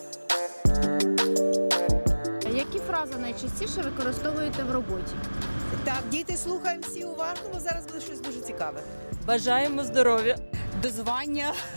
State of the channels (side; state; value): both; inverted; correlation -1.00